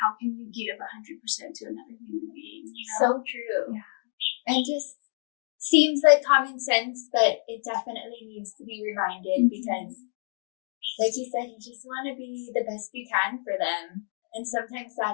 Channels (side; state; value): right; silent; 59 dB below the other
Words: can you give 100% to another human being? So true. Yeah. And just seems like common sense, but it definitely needs to be reminded because, like you said, you just want to be the best you can for them. And sometimes that